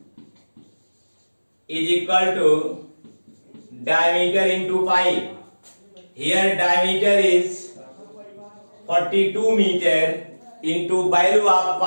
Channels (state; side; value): inverted; both; correlation -1.00